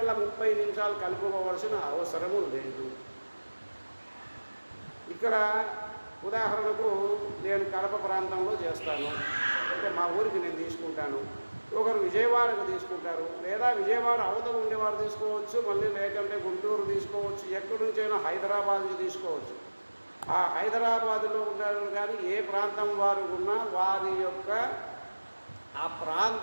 30 నిమిషాలు కలుపుకోవాల్సిన అవసరము లేదు. ఇక్కడ ఉదాహరణకు నేను కడప ప్రాంతంలో చేస్తాను అంటే మా ఊరికి నేను తీసుకుంటాను, ఒకరు విజయవాడకు తీసుకుంటారు, లేదా విజయవాడ అవతల ఉండేవారు తీసుకోవచ్చు, మళ్ళీ లేకంటే గుంటూరు తీసుకోవచ్చు, ఎక్కడి నుంచైనా హైదరాబాద్ నుంచి తీసుకోవచ్చు. ఆ హైదరాబాదులో ఉన్నారు కానీ ఏ ప్రాంతం వారు ఉన్నా వారి యొక్క ఆ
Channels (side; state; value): both; inverted; correlation -1.00